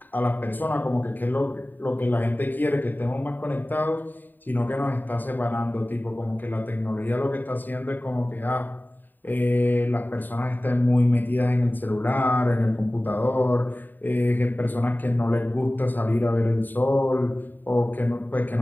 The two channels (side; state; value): right; late; 0.090 ms